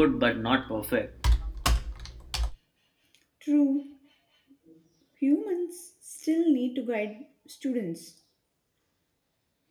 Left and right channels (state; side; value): identical; both; correlation 1.00